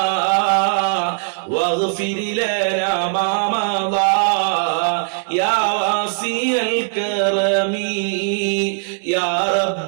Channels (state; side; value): silent; left; 66 dB below the other